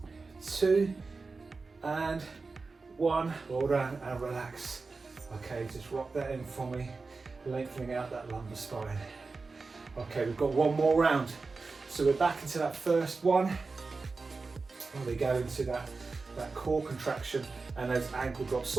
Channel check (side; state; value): left; quieter; 4.1 dB